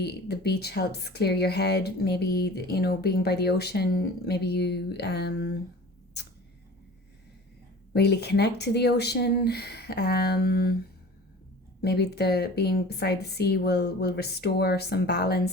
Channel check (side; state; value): both; normal; correlation 0.41